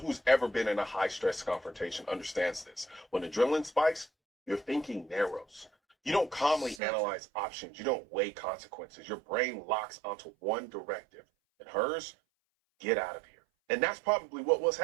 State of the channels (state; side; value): drops out; left; at 6.8 s